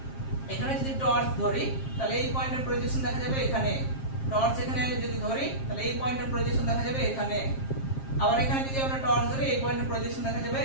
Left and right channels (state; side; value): late; right; 7.5 ms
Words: এখানে যদি টর্চ ধরি তাহলে এই পয়েন্টের প্রজেকশন দেখা যাবে এখানে, টর্চ এখানে যদি ধরি তাহলে এই পয়েন্টের প্রজেকশন দেখা যাবে এখানে, আবার এখানে যদি আমরা টর্চ ধরি এই পয়েন্টের প্রজেকশন দেখা যাবে